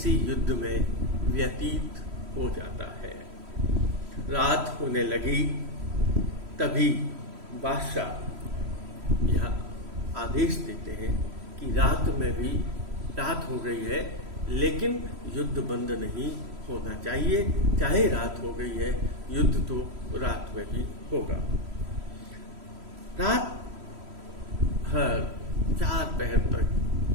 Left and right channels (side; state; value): left; late; 3.1 ms